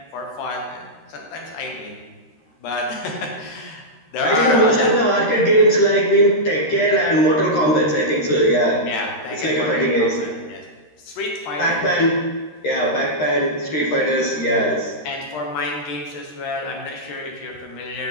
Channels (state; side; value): late; right; 13 ms